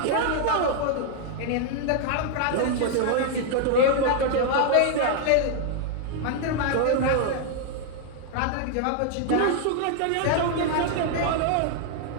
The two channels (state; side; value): different; both; correlation 0.00